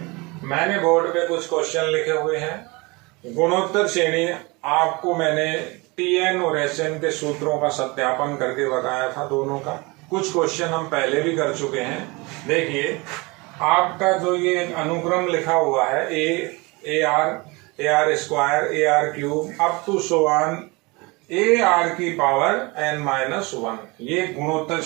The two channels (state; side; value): quieter; left; 25.8 dB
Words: मैंने बोर्ड पे कुछ क्वेश्चन लिखे हुए हैं। गुणोत्तर श्रेणी आपको मैंने टीएन और एसएन के सूत्रों का सत्यापन करके बताया था, दोनों का। कुछ क्वेश्चन हम पहले भी कर चुके हैं। देखिए, आपका जो ये अनुक्रम लिखा हुआ है a r square, a r cube up to so on a r की पावर n-1, ये गुणोत्तर